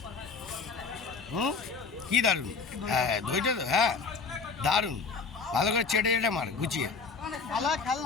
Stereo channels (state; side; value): quieter; right; 5.1 dB